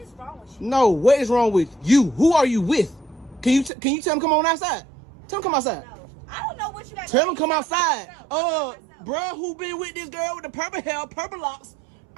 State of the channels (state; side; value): drops out; left; at 3.7 s